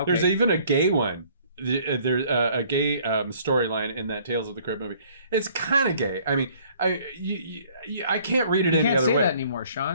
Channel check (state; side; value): inverted; both; correlation -0.58